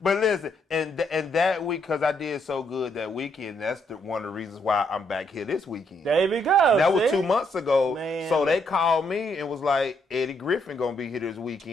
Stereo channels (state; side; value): normal; both; correlation 0.74